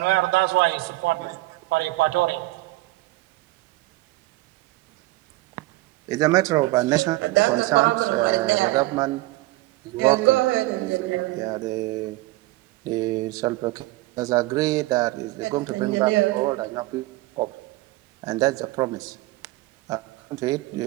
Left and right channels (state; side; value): quieter; left; 19.9 dB